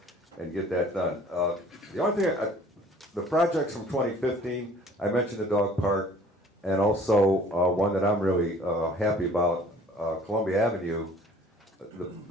and get that done. The only thing, the projects from 2015, I mentioned the dog park, and also one that I'm really happy about, Columbia Avenue.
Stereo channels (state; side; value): normal; both; correlation 0.52